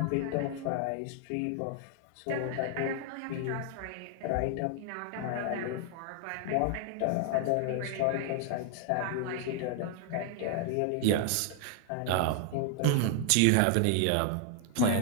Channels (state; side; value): different; both; correlation 0.00